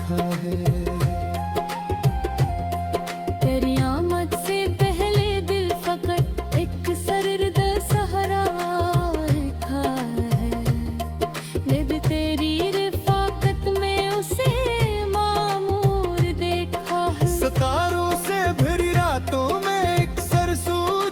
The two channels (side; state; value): both; identical; correlation 1.00